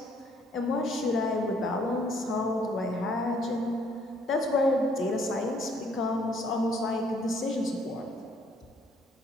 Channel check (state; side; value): normal; both; correlation 0.64